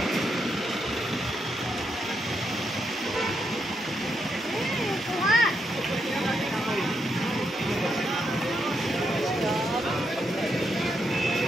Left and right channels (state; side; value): normal; both; correlation 0.81